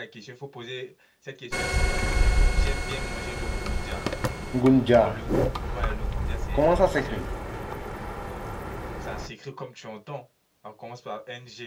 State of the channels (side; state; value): both; identical; correlation 1.00